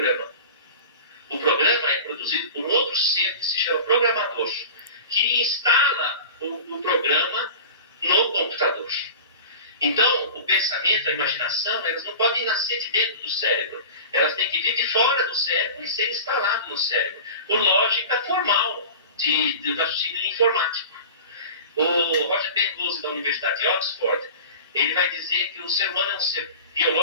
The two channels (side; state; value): both; inverted; correlation -0.36